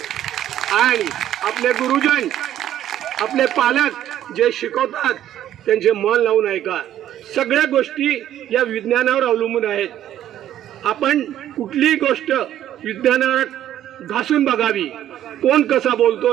आणि आपले गुरुजन, आपले पालक जे शिकवतात त्यांचे मन लावून ऐका। सगळ्या गोष्टी या विज्ञानावर अवलंबून आहेत। आपण कुठलीही गोष्ट विज्ञानावर घासून बघावी, कोण कसा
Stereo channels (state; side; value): quieter; left; 11.7 dB